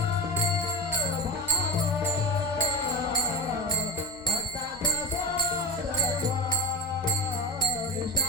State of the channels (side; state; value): right; noise; hum, 23 dB below the sound